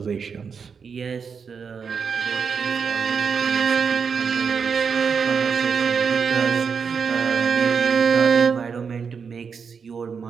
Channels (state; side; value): quieter; left; 6.0 dB